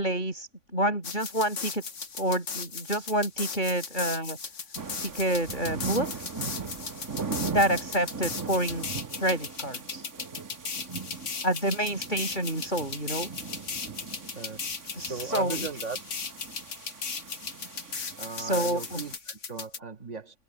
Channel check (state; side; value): late; right; 3.5 ms